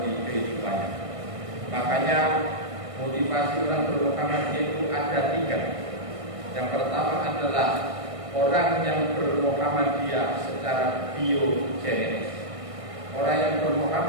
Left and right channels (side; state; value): left; late; 1.6 ms